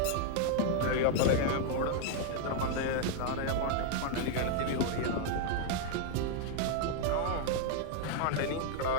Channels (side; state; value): both; different; correlation 0.00